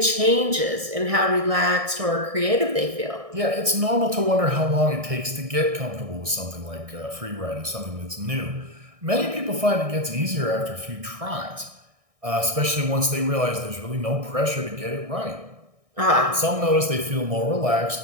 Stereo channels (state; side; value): late; left; 1.6 ms